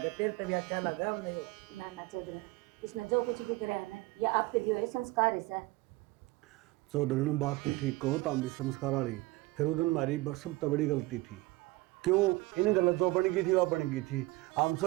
तेरे तभी अच्छा लगा हमने। ना चौधरी इसने जो कुछ भी करा है ना या आपके दिए हुए संस्कार है। चौधरी ने बात तो ठीक कहो ताम भी संस्कार वाली। फिर उस दिन हमारी सब तो बड़ी गलती थी। क्यों इन गलत जो बन गई थी वह बन गई थी। हम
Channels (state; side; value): quieter; left; 20.7 dB